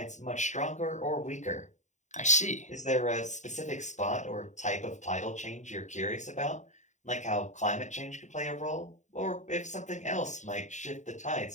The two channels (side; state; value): right; late; 0.34 ms